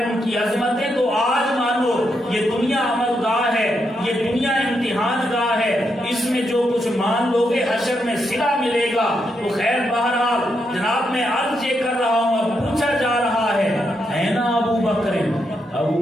ان کی عظمتیں تو آج مانو، یہ دنیا عمل گاہ ہے، یہ دنیا امتحان گاہ ہے، اس میں جو کچھ مان لو گے حشر میں صلہ ملے گا۔ تو خیر بہرحال جناب میں عرض یہ کر رہا ہوں، اب پوچھا جا رہا ہے نا ابو بکر، ابو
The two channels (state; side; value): normal; both; correlation 0.81